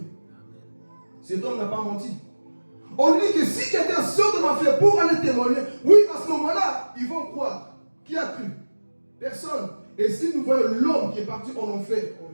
Cet homme n'a pas menti. On dit que si quelqu'un sort de l'enfer pour aller témoigner, oui, à ce moment-là, ils vont croire. Qui a cru? Personne. Et si nous voyons l'homme qui est parti en enfer, oh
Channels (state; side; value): inverted; both; correlation -1.00